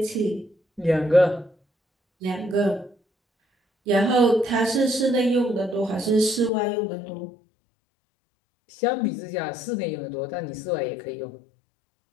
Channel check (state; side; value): drops out; right; at 6.5 s